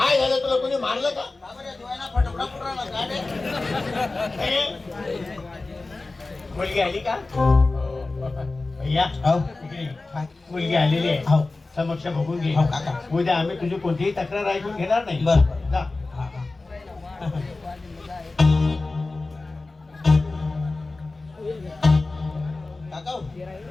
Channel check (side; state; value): right; quieter; 3.4 dB